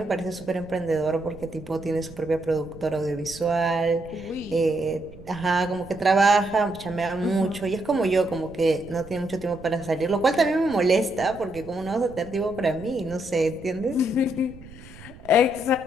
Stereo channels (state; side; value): noise; right; rumble, 18 dB below the sound